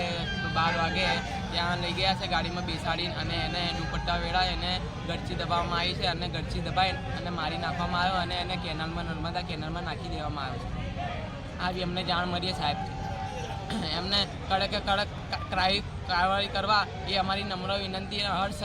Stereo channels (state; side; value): identical; both; correlation 1.00